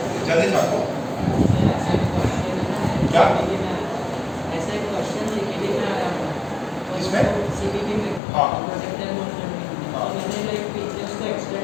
जल्दी छापो। क्या ऐसा एक क्वेश्चन सीपीटी में आया था। किसमें? सीपीटी में। हाँ। प्रोजेक्टाइल मोशन में। हाँ। तो मैंने लाइक पीछे उसको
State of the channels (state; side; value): drops out; right; at 8.2 s